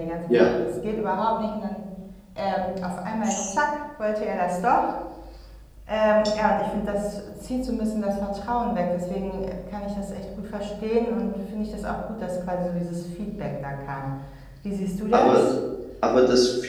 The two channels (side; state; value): both; identical; correlation 1.00